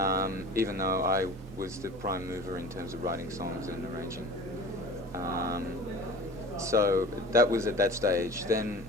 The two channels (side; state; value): both; normal; correlation 0.38